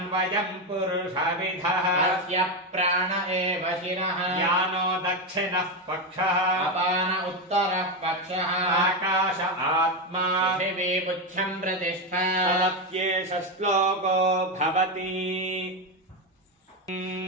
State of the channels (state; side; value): normal; both; correlation 0.10